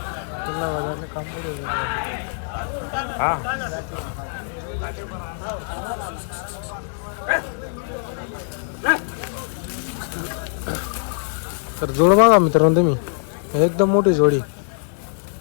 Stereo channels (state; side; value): silent; right; 63 dB below the other